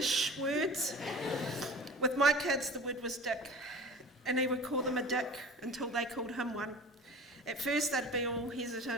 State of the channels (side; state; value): both; normal; correlation 0.39